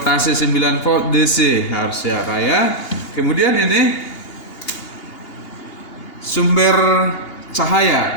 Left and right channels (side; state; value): right; late; 2.8 ms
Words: 9 volt DC harusnya ya. Kemudian ini sumber